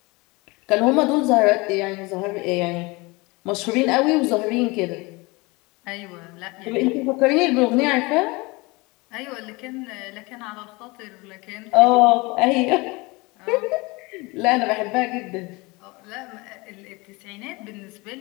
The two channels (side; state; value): right; quieter; 24.9 dB